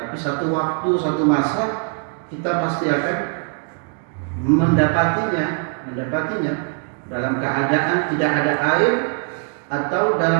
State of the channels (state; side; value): quieter; left; 39.6 dB